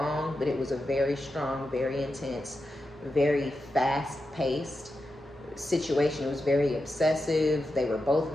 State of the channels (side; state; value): both; normal; correlation 0.89